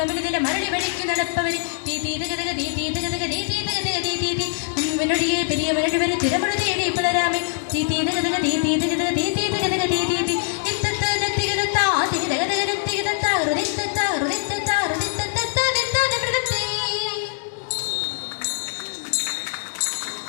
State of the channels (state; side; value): silent; right; digital silence